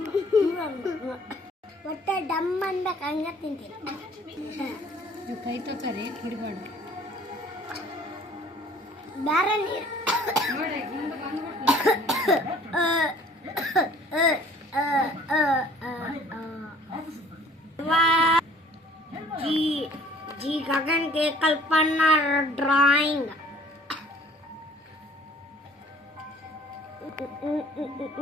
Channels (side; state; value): both; normal; correlation 0.53